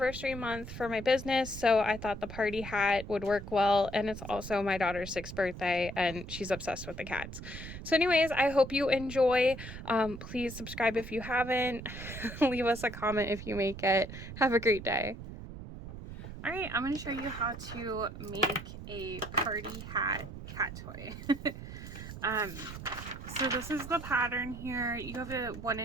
month for my business, so I thought the party hat would work well, and it's also my daughter's 6th birthday, and she's obsessed with the cats. So anyways, I hope you enjoy. Please subscribe if you haven't. Leave us a comment if you make it. Have a great day. Alright, I'm going to show you how to make a party hat cat toy. So this is the pattern here. You have a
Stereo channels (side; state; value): right; noise; rumble, 11 dB below the sound